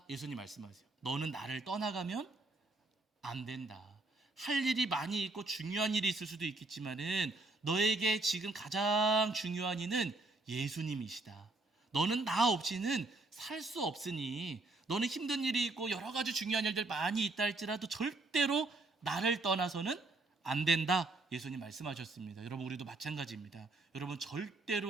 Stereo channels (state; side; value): quieter; left; 3.1 dB